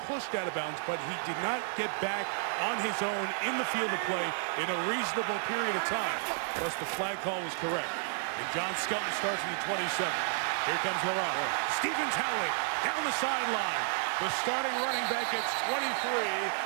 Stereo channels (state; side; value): silent; left; 57 dB below the other